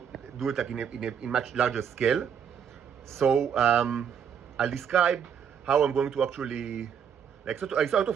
do it like in much larger scale. So I'll describe how I'm going to actually, like, sort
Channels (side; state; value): left; quieter; 7.7 dB